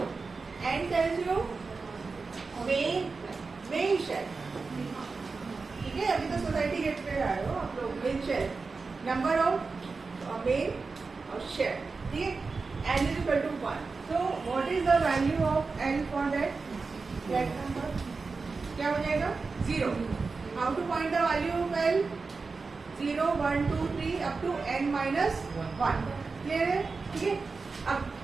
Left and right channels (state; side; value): quieter; left; 4.3 dB